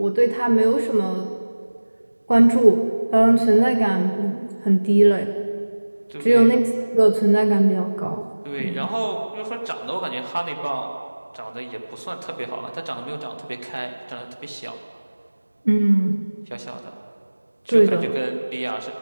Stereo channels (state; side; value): inverted; both; correlation -1.00